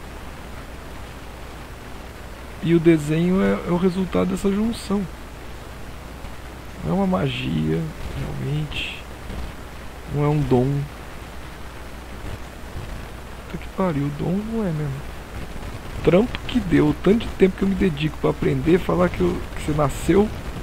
E o desenho é o resultado dessa junção. Não é uma magia, realmente. Não é um dom. Puta que pariu, o dom não é mesmo. Trampo que deu, o tanto de tempo que eu me dedico pra aprender, falar que você nasceu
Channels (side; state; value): both; identical; correlation 1.00